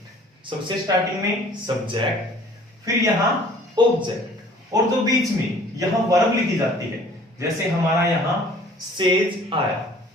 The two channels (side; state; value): both; normal; correlation 0.52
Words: सबसे स्टार्टिंग में सब्जेक्ट, फिर यहां ऑब्जेक्ट और जो बीच में यहां वर्ब लिखी जाती है, जैसे हमारा यहां सेज आया